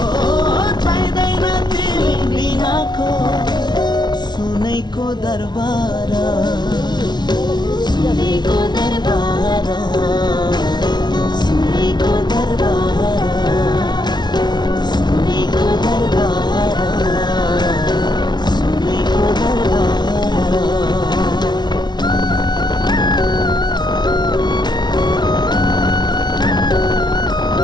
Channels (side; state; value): right; late; 0.20 ms